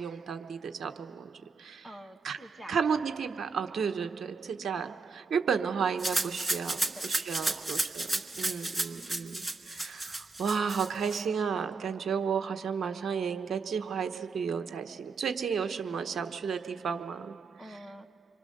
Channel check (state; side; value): quieter; left; 4.9 dB